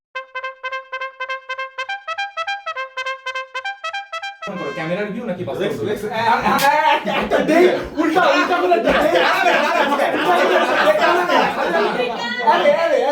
ক্যামেরার ভিউ নাকি বাস্তব লেক্স view? লেক্স একটা দে উল্টা উল্টা করে দে। আরে আরে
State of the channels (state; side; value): identical; both; correlation 1.00